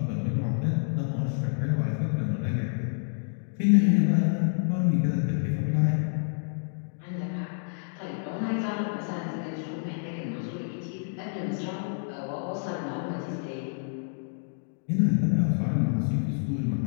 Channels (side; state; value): right; silent; digital silence